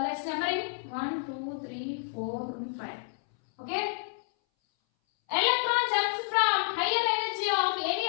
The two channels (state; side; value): silent; right; 58 dB below the other